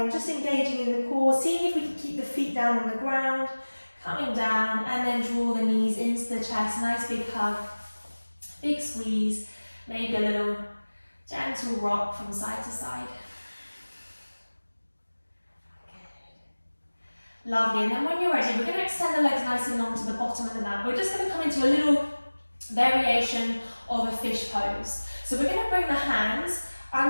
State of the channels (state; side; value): inverted; both; correlation -1.00